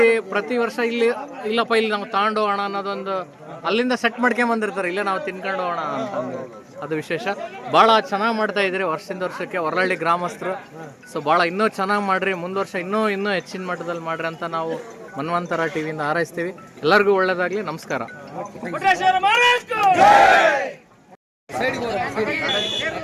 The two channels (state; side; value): identical; both; correlation 1.00